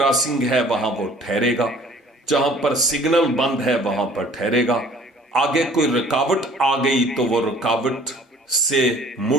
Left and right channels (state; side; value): normal; both; correlation 0.52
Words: है वहां वो ठहरेगा, जहां पर सिग्नल बंद है वहां पर ठहरेगा। आगे कोई रुकावट आ गई तो वो रुकावट से